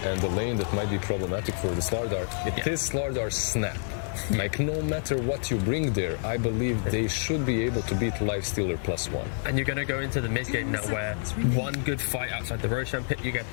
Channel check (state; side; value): silent; right; 59 dB below the other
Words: and the lane that might be problematic for the Slardar, it is Slardar's snap. Like, no matter what you bring there, I believe they should be able to beat Lifestealer +1. And you're going to go into the mid game now where one good fight outside the Roshan pit, you get